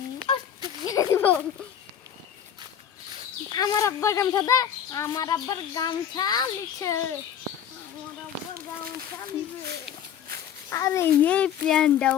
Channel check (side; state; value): right; quieter; 9.2 dB